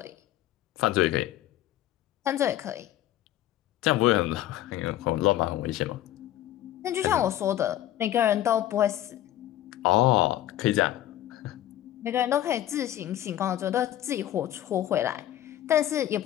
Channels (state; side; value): quieter; right; 13.0 dB